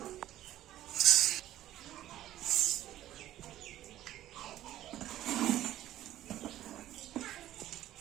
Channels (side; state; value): left; quieter; 13.5 dB